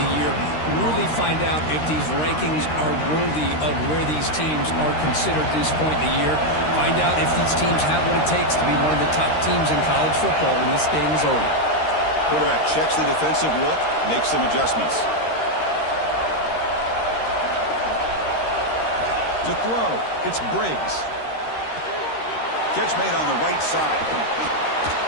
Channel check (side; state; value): right; late; 13 ms